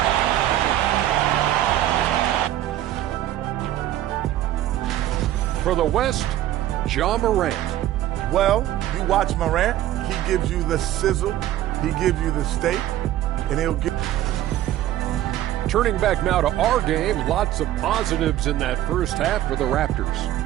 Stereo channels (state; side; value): quieter; left; 13.3 dB